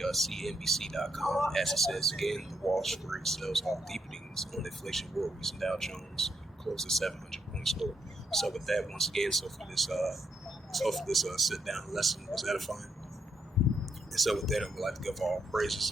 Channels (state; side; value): normal; both; correlation 0.79